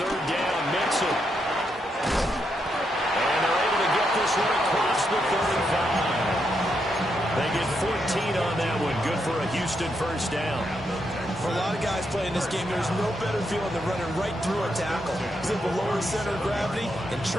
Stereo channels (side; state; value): both; normal; correlation 0.81